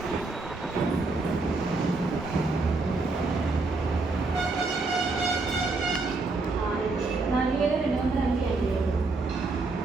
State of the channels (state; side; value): quieter; left; 3.6 dB